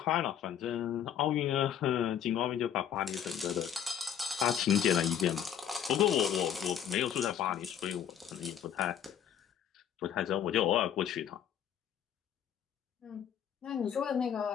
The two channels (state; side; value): quieter; right; 9.4 dB